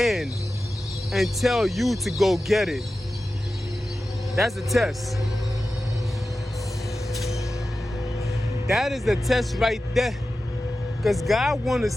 and tell you to go get it. That's a test. That is the test right there. Because God want to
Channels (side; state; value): both; normal; correlation 0.94